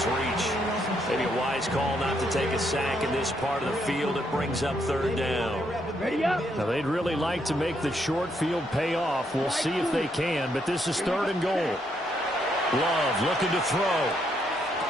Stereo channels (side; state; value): both; normal; correlation 0.75